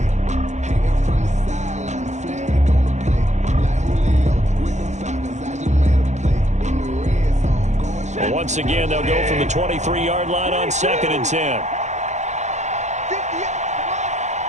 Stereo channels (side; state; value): left; late; 0.34 ms